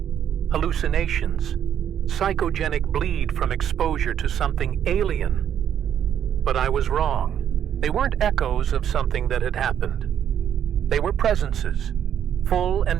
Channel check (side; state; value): left; quieter; 9.5 dB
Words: hallucinations, psychogenic bleed from exposure to something alien. But I was wrong. They weren't echoes of something that had happened. They were presences, full and